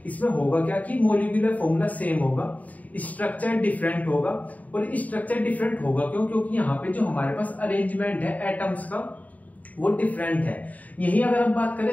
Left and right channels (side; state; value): right; late; 0.073 ms